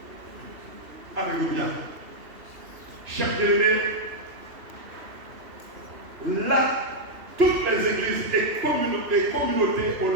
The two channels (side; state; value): left; late; 3.1 ms